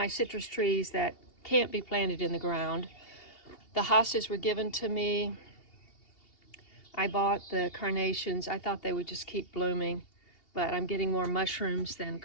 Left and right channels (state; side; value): late; right; 2.8 ms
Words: citrus trees that can't be planted in the ground. The hostas were given to me. I bought the carnations. I thought they would just keep blooming, but I'm getting more mushrooms than